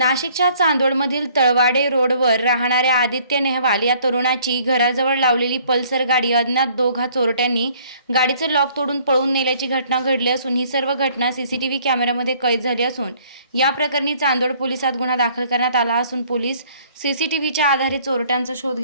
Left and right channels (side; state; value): both; inverted; correlation -0.59